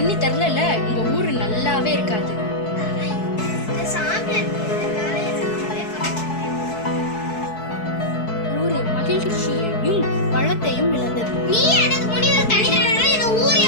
தரல, உங்க ஊரு நல்லாவே இருக்காது. ஊரு மகிழ்ச்சியையும் வளத்தையும் இழந்தது. நீ எனக்கு முன்னாடி தண்ணி தரனால இந்த ஊரே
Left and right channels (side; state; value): right; late; 4.6 ms